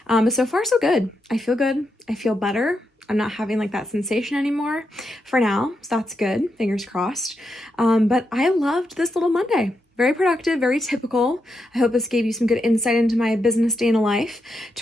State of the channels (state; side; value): normal; both; correlation 0.84